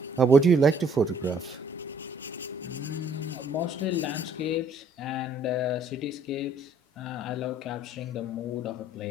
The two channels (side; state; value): both; normal; correlation 0.61